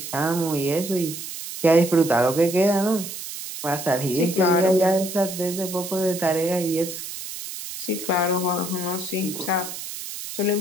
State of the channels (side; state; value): right; noise; hiss, 9 dB below the sound